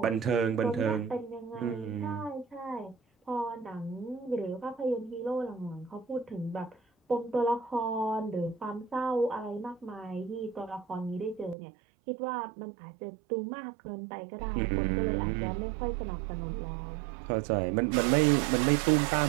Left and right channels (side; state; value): left; drops out; at 11.6 s